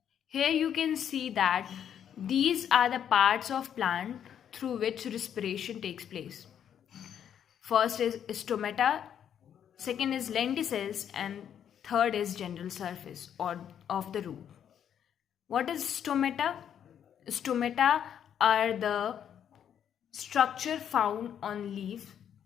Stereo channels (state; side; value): quieter; right; 9.1 dB